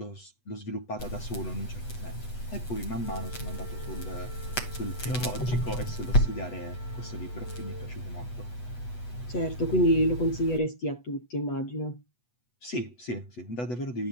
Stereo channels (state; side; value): late; right; 8.2 ms